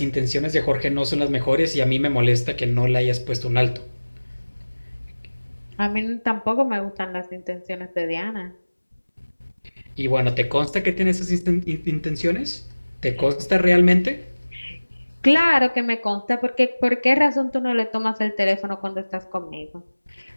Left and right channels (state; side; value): inverted; both; correlation -1.00